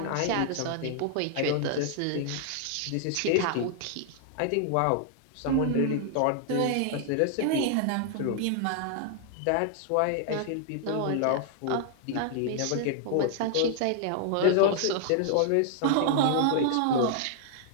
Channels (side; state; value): both; different; correlation 0.00